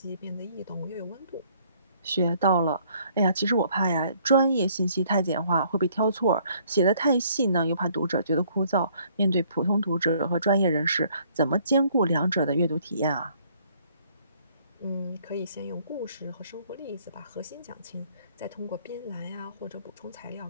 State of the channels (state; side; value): inverted; both; correlation -0.62